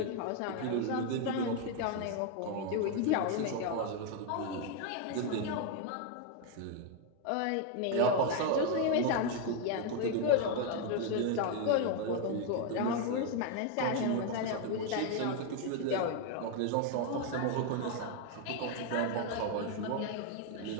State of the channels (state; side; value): different; both; correlation 0.01